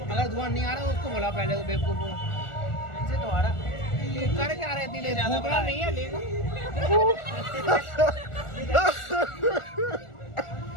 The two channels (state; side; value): late; right; 1.4 ms